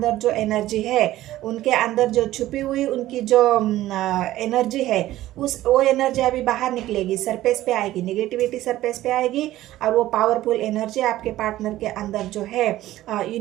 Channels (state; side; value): quieter; left; 15.1 dB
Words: जो एनर्जी है, उनके अंदर जो छुपी हुई उनकी जो एनर्जी है, वो एनर्जी अभी बाहर निकलेगी, सरफेस पे आएगी, नेगेटिविटी सरफेस पे आएगी, और वो पावरफुल एनर्जी आपके पार्टनर के अंदर जो है,